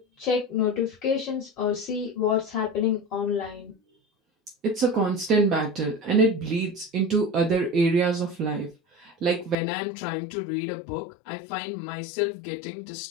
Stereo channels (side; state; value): right; drops out; at 9.6 s